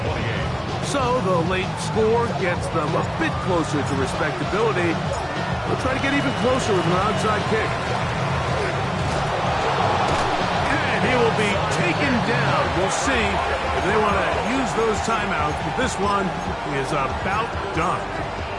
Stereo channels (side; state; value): both; identical; correlation 1.00